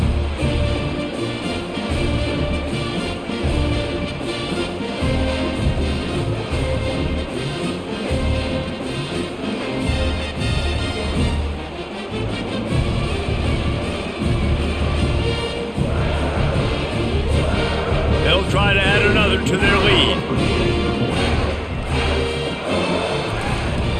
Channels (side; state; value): both; identical; correlation 1.00